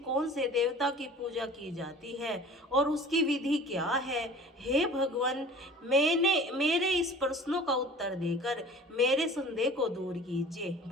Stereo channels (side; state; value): both; normal; correlation 0.44